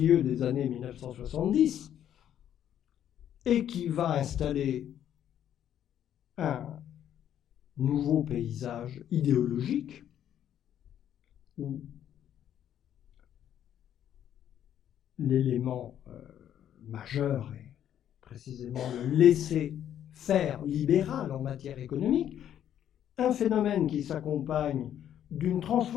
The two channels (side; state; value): right; quieter; 10.4 dB